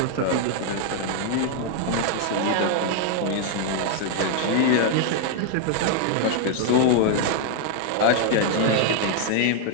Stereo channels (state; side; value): different; both; correlation 0.00